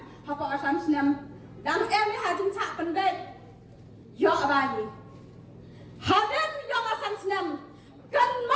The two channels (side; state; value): both; identical; correlation 1.00